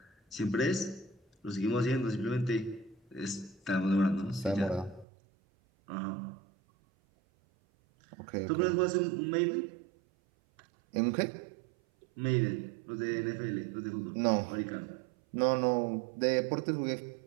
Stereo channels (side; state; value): left; drops out; at 5.1 s